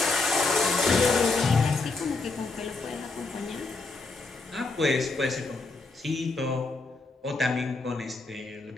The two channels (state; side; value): quieter; right; 3.7 dB